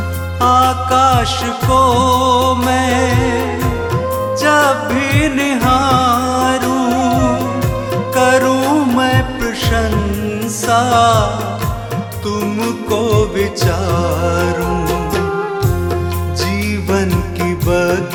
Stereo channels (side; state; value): both; identical; correlation 1.00